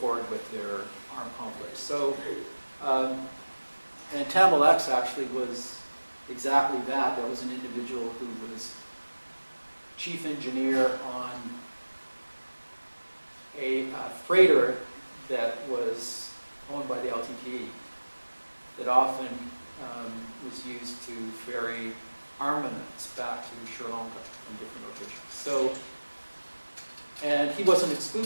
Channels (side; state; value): both; inverted; correlation -1.00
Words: with their armed conflicts. So, and Tamil X actually was exactly that. That was an individual who was chief engineer on a freighter that was owned by the LTTE that often was used to ferry armaments back to Sri Lanka from different locations. So, and he wasn't